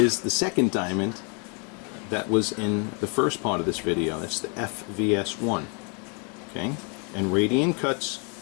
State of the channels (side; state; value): right; quieter; 36.4 dB